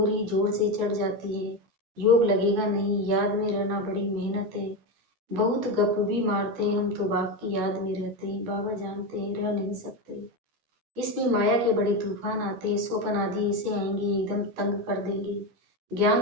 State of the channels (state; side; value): late; left; 12 ms